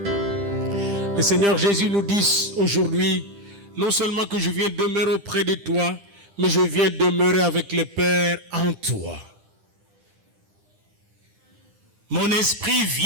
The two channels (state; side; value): late; left; 10 ms